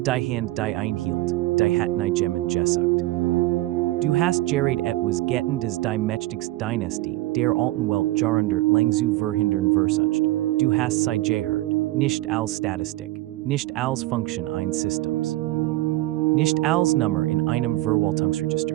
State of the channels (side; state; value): left; quieter; 17.7 dB